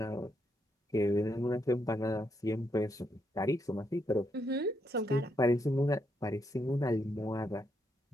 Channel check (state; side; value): normal; both; correlation 0.78